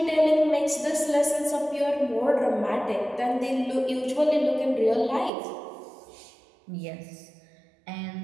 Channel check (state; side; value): drops out; left; at 5.3 s